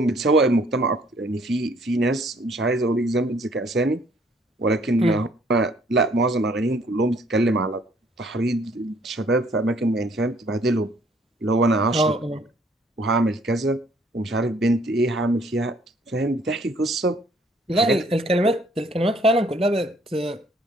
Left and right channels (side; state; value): both; normal; correlation 0.62